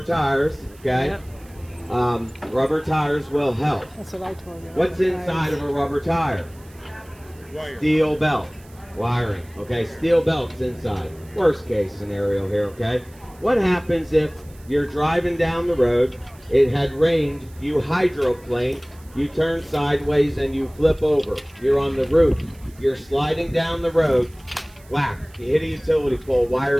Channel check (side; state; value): right; noise; hiss, 27 dB below the sound